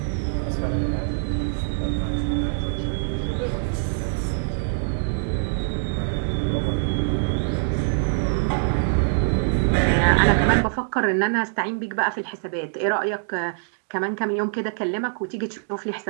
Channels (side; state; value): left; silent; digital silence